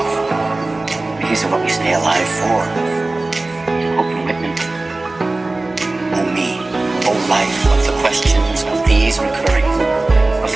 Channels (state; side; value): quieter; left; 3.1 dB